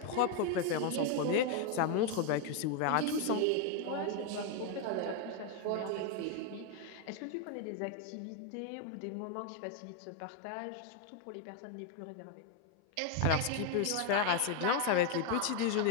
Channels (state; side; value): different; both; correlation 0.01